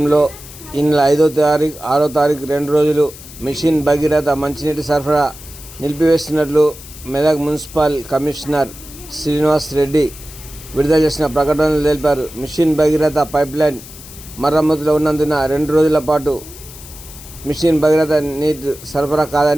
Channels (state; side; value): noise; left; hiss, 17 dB below the sound